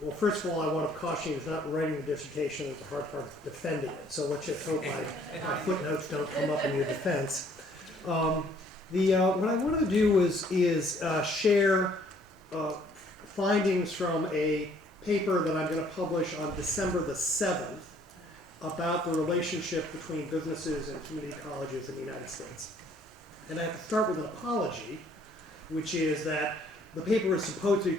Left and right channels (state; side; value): normal; both; correlation 0.61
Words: first of all, I want to caution you, it's not writing the dissertation is the hard part, of defending it. So let's just hope my footnotes don't come up in your defense. What I wanted to do is share findings from a paper that I'm going to publish on December the 7th about the relationship between businesses and community colleges in the United States. And I have to start with an apology, which is that the paper was supposed to be